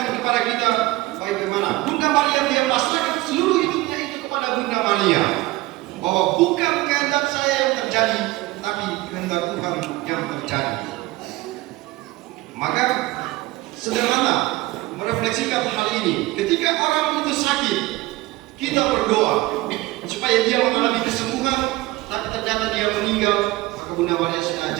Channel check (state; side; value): quieter; left; 19.2 dB